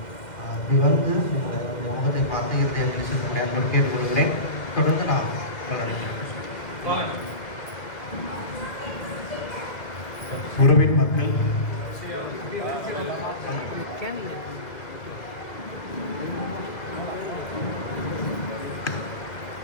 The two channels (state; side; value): late; right; 2.0 ms